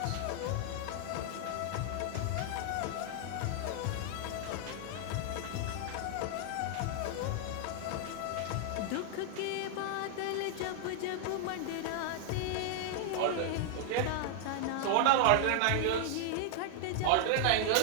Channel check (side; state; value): both; different; correlation 0.00